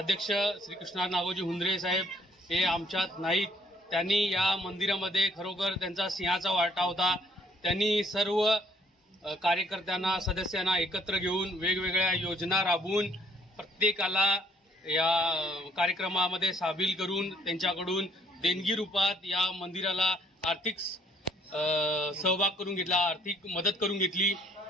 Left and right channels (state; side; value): normal; both; correlation 0.63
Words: श्री कृष्णा नागोजी हुंद्रे साहेब हे आमच्यात नाहीत. त्यांनी या मंदिरामध्ये खरोखर त्यांचा सिंहाचा वाटा होता. त्यांनी सर्व कार्यकर्त्यांना सदस्यांना एकत्र घेऊन वेगवेगळ्या योजना राबवून प्रत्येकाला या कार्यक्रमामध्ये सामील करून त्यांच्याकडून देणगी रूपात या मंदिराला आर्थिक सहभाग करून घेतला, आर्थिक मदत करून घेतली.